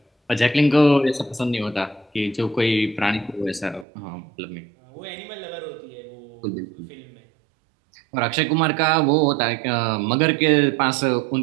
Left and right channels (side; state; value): left; drops out; at 3.9 s